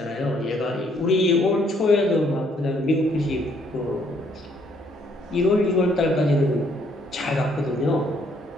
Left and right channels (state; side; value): normal; both; correlation 0.67